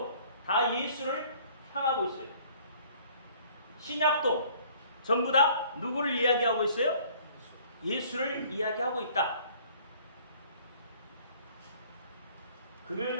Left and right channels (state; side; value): inverted; both; correlation -0.55